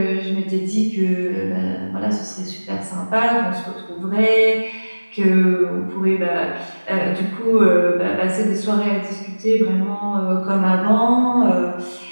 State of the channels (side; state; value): both; inverted; correlation -1.00